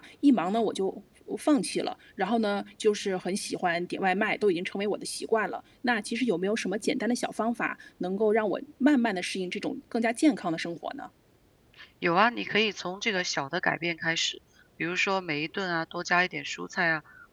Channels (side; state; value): both; identical; correlation 1.00